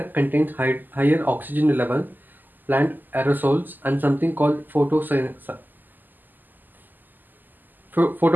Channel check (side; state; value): left; late; 0.087 ms